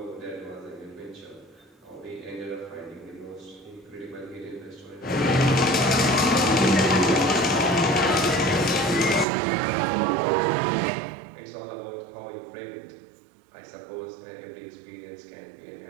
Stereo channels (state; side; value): drops out; left; at 9.2 s